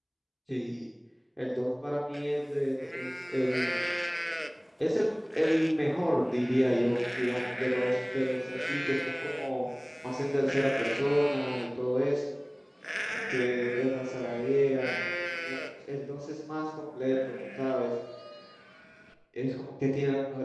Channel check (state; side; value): identical; both; correlation 1.00